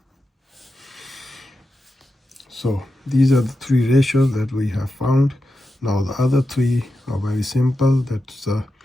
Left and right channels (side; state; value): both; normal; correlation 0.90